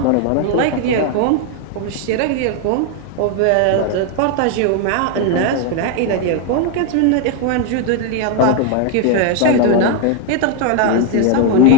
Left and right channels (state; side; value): different; both; correlation 0.01